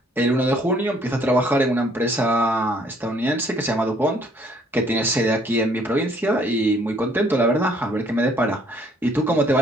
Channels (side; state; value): both; normal; correlation 0.63